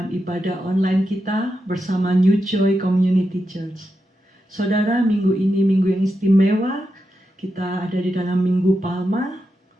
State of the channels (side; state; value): both; normal; correlation 0.87